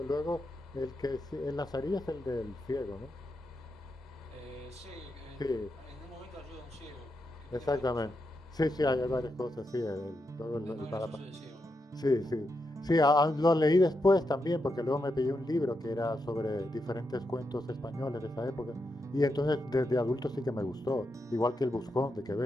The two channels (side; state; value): both; normal; correlation 0.85